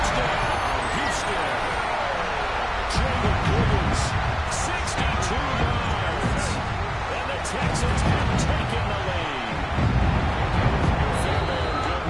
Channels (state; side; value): identical; both; correlation 1.00